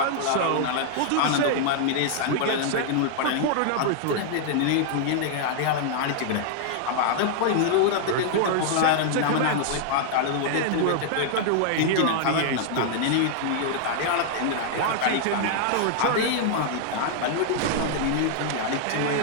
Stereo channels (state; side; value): different; both; correlation -0.01